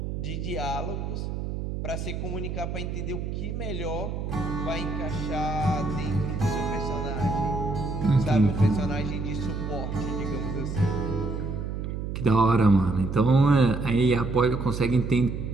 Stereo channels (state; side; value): noise; right; hum, 4 dB below the sound